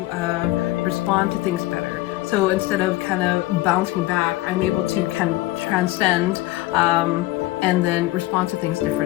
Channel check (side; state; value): right; quieter; 17.8 dB